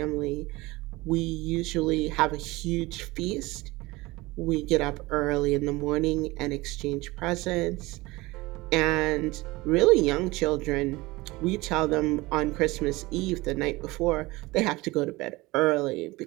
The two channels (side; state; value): left; quieter; 21.3 dB